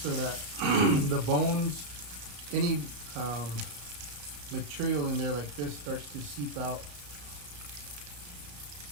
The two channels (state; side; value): late; left; 34 ms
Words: that the bones, any material in there like this starts to seep out.